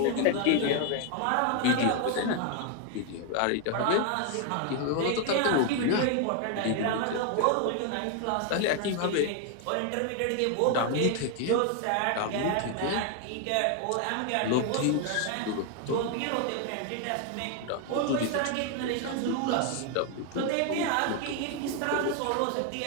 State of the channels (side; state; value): both; different; correlation 0.01